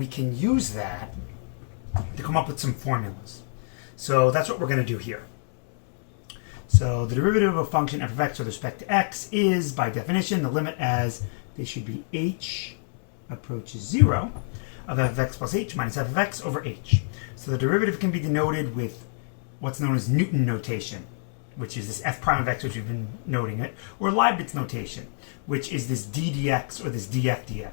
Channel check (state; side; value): silent; right; digital silence